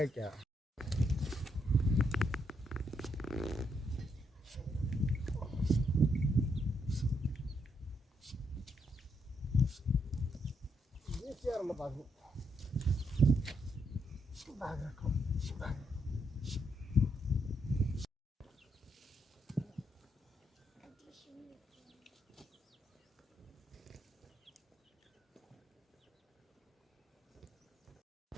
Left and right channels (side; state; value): both; normal; correlation 0.77